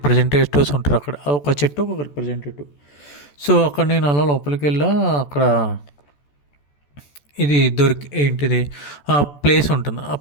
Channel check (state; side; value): late; right; 14 ms